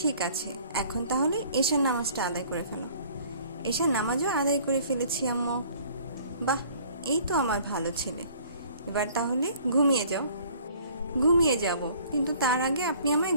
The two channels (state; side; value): inverted; both; correlation -0.54